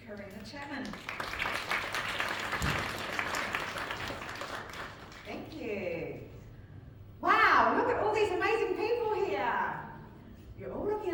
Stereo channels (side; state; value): both; identical; correlation 1.00